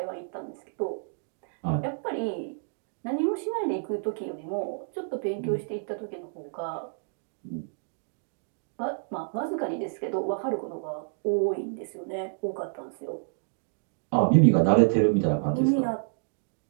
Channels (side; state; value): left; silent; digital silence